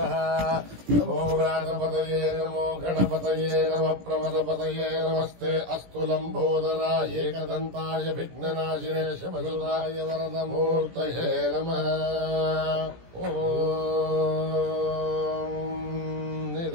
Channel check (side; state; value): left; late; 17 ms